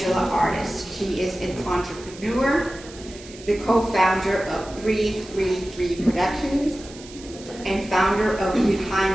Artis. She is an entrepreneur, the co-founder of 333 Productions, and founder of Behind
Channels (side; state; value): right; noise; hiss, 18 dB below the sound